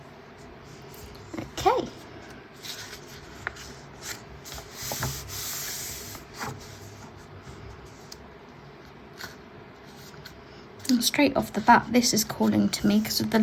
Okay. And straight off the bat, this is calling to me because of the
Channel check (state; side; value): identical; both; correlation 1.00